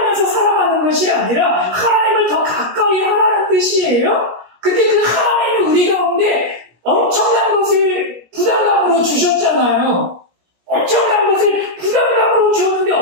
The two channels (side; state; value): left; late; 17 ms